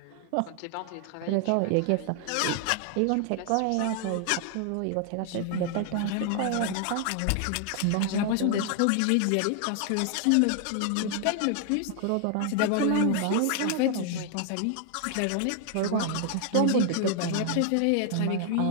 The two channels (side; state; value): both; different; correlation 0.00